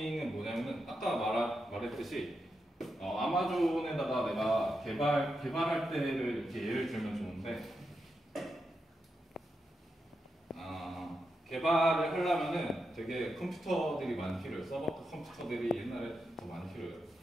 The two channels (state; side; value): normal; both; correlation 0.86